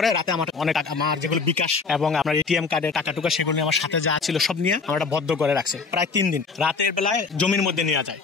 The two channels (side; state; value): right; quieter; 4.7 dB